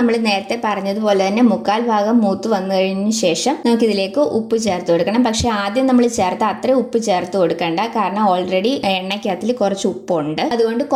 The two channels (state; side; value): identical; both; correlation 1.00